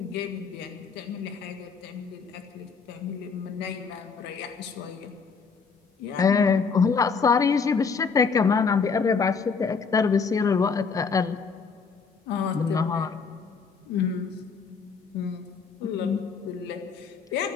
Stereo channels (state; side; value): quieter; right; 5.4 dB